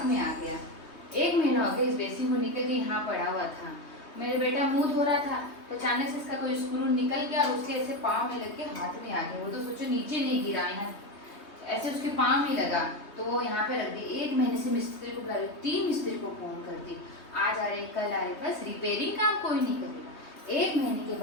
में आ गया। 1 महीना हो गया इस बेसिन को निकल के यहाँ पड़ा हुआ था। मेरे बेटा मुंह धो रहा था तो अचानक से इसका कोई स्क्रू निकल गया और उसके ऐसे पाँव में लग के हाथ में आ गया। वो तो सोचो नीचे नहीं गिरा, यहाँ ऐसे उसके पाँव में लगा तो वो यहाँ पे रख दी। 1 महीने से मिस्त्री को बुला रही, 3 मिस्त्री को फोन कर दी, आज आ रहे कल आ रहे, बस रिपेयरिंग काम कोई नहीं करेगा। 1 महीने के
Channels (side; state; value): right; late; 3.2 ms